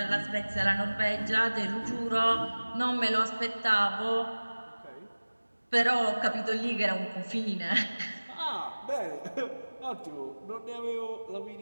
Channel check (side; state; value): both; inverted; correlation -1.00